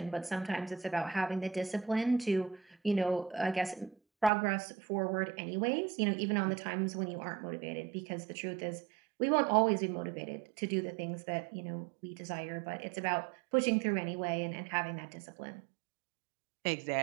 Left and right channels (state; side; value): drops out; left; at 4.3 s